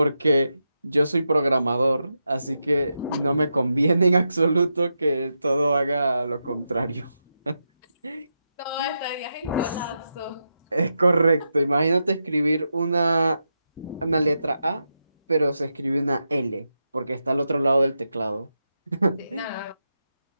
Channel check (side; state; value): both; inverted; correlation -0.87